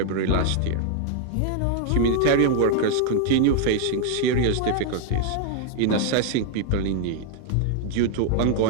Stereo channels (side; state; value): both; different; correlation 0.00